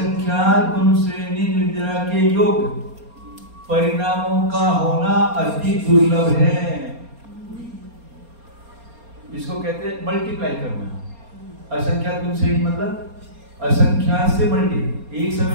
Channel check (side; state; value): left; late; 4.3 ms